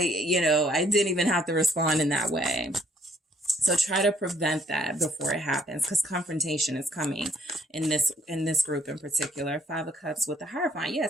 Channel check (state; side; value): normal; both; correlation 0.65